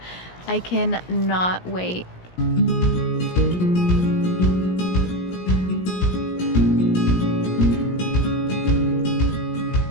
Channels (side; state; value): right; late; 17 ms